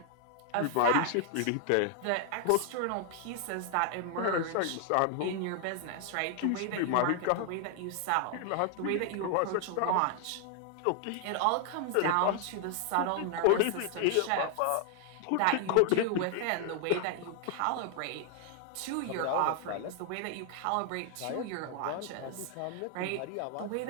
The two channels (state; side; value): different; both; correlation 0.00